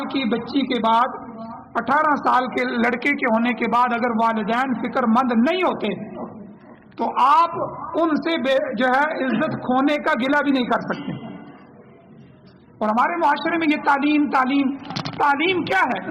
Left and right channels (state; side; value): identical; both; correlation 1.00